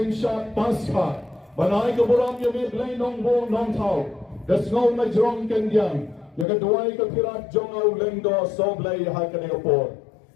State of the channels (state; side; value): drops out; right; at 6.5 s